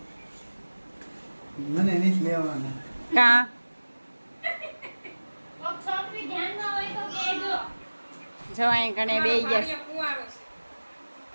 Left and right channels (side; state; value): both; inverted; correlation -1.00